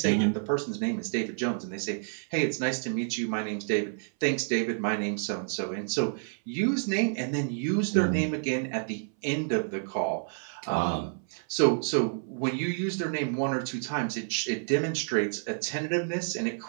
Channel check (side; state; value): left; silent; 58 dB below the other